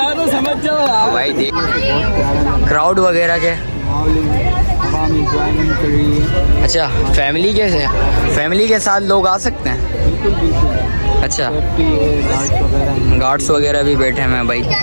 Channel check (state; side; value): inverted; both; correlation -1.00